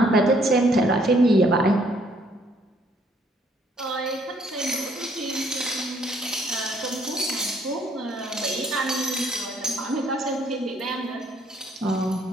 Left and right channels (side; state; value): both; normal; correlation 0.65